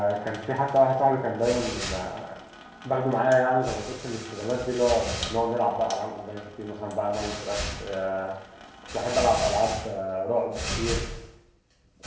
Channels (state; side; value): identical; both; correlation 1.00